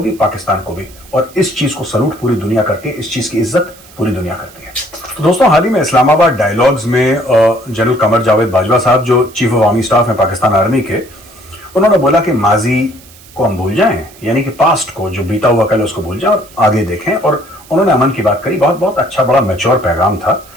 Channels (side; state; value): right; noise; hiss, 23 dB below the sound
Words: भी, पाकिस्तान को भी, और इस चीज को सलूट पूरी दुनिया करती है, इस चीज की इज्जत पूरी दुनिया करती है। तो दोस्तों, हाल ही में इस्लामाबाद डायलॉग्स में जनरल कमर जावेद बाजवा साहब जो चीफ ऑफ आर्मी स्टाफ हैं पाकिस्तान आर्मी के, उन्होंने बोला कि माजी को हम भूल जाएं, यानी कि पास्ट को, जो बीता हुआ कल, उसको भूल जाएं और आगे देखें। और उन्होंने अमन की बात करी। बहुत बहुत अच्छा, बड़ा मैच्योर पैगाम था।